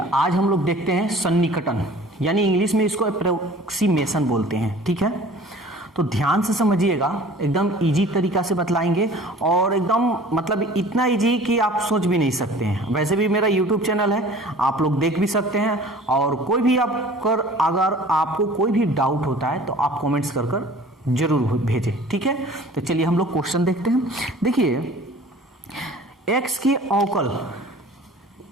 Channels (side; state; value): both; normal; correlation 0.47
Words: आज हम लोग देखते हैं सन्निकटन, यानी इंग्लिश में इसको अप्रोक्सीमेशन बोलते हैं। ठीक है, तो ध्यान से समझिएगा, एकदम इजी तरीका से बतलाएंगे और एकदम मतलब इतना इजी कि आप सोच भी नहीं सकते हैं। वैसे भी मेरा यूट्यूब चैनल है, आप लोग देख भी सकते हैं और कोई भी अगर आपको कोई भी डाउट होता है तो आप कमेंट्स कर जरूर भेजें। ठीक है, तो चलिए हम लोग क्वेश्चन देखते हैं। देखिए x के अवकल,